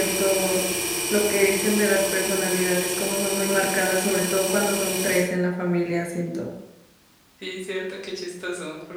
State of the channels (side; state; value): both; identical; correlation 1.00